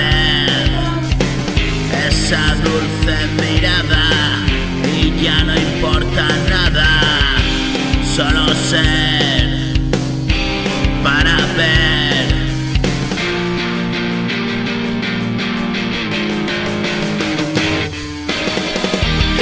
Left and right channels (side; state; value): both; identical; correlation 1.00